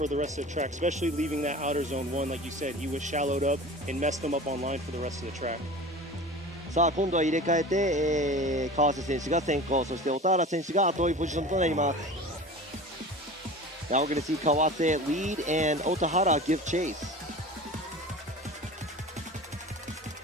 the rest of the track, especially leaving that outer zone 1. Like you said, he was shallowed up and messed them up on line for the rest of the track. さあ今度は入れ替えて、川瀬選手が先行、そして小田原選手が後追いポジションとなります。Now we're going to see Kawase lead and Otahara give chase.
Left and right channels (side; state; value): both; normal; correlation 0.36